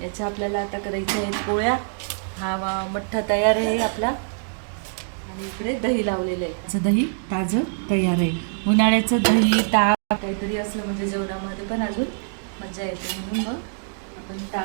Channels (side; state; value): left; silent; digital silence